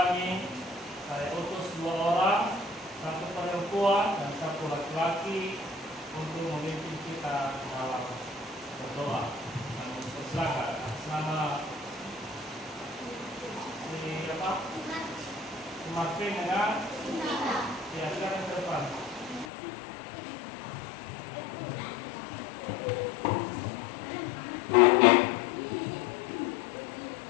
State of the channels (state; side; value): drops out; right; at 19.5 s